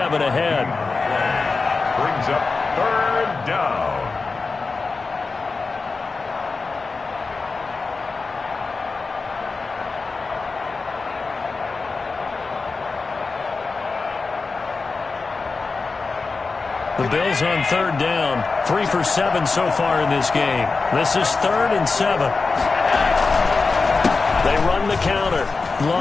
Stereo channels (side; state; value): right; quieter; 4.2 dB